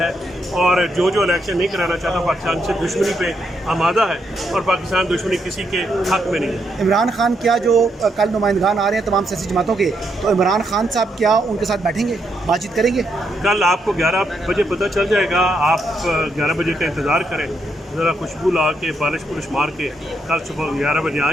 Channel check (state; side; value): normal; both; correlation 0.78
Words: اور جو الیکشن نہیں کرانا چاہتا پاکستان سے دشمنی پہ آمادہ ہے، اور پاکستان دشمنی کسی کے حق میں نہیں ہے. عمران خان کیا جو کل نمائندگان آ رہے ہیں تمام سیاسی جماعتوں کے، تو عمران خان صاحب کیا ان کے ساتھ بیٹھیں گے، بات چیت کریں گے؟ کل آپ کو 11 بجے پتہ چل جائے گا. آپ 11 بجے کا انتظار کریں، ذرا خوشبو لا کے پالش پولش مار کے کل صبح 11 بجے آ